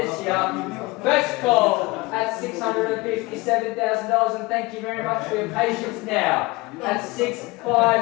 here. First call at $657,000, and thank you very much for your patience now. At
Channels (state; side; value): quieter; right; 22.7 dB